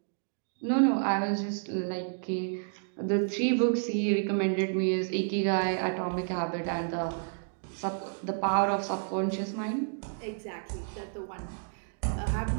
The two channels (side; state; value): left; silent; digital silence